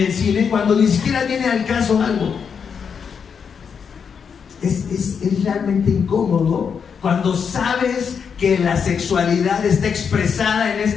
cine cuando ni siquiera viene al caso algo. Es realmente incómodo cuando sabes que la sexualidad está expresada en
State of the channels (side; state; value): right; quieter; 6.6 dB